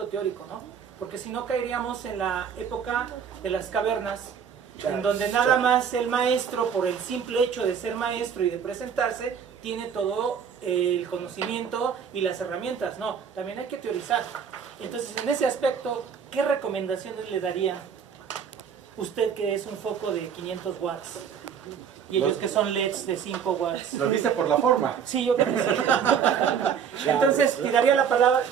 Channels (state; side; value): quieter; left; 7.4 dB